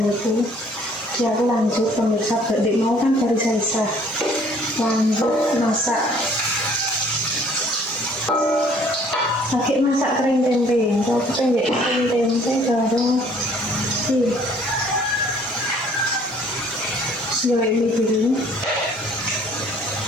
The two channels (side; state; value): both; normal; correlation 0.57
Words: Jadi aku lanjut pemirsa, berdek mau kan baru selesai. Lanjut masak. Pakai masak kering tempe. Kalau kita nggak kering tempe baru ini dulu.